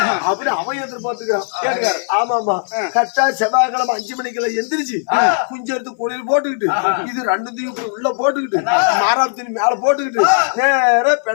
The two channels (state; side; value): silent; right; 59 dB below the other